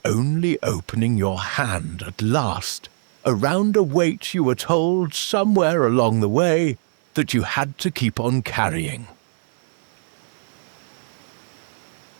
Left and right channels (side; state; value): left; silent; digital silence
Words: only opening your hand at last, around a weight you were told somewhere along the way that you had to keep on carrying.